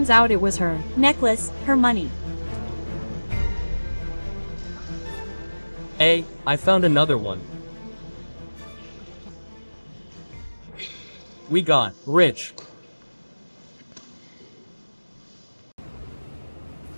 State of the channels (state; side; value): inverted; both; correlation -1.00